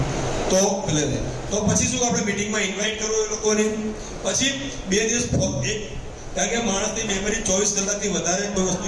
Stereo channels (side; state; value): both; identical; correlation 1.00